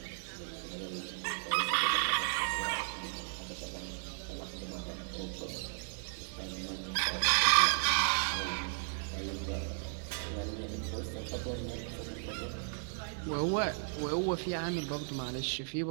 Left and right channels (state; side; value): silent; left; digital silence